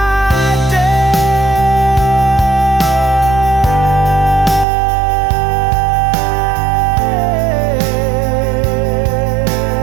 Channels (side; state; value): left; drops out; at 4.7 s